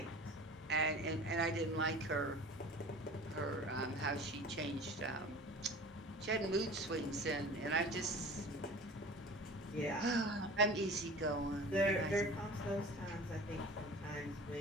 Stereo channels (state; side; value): normal; both; correlation 0.40